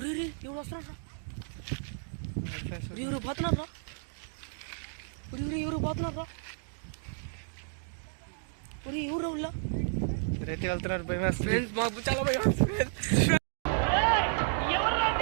ఎవరు వస్తున్నారా? ఫ్రెండ్స్ ఎవరు పోతున్నారా? ఎవరు పోతున్నారా? ఎవరు ఉల్లా ఇద్దరైతే వెళ్తున్నారు, భయం వేస్తుంది. ఫ్రెండ్స్ మాకు చాలా భయం వేస్తుంది.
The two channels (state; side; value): silent; left; digital silence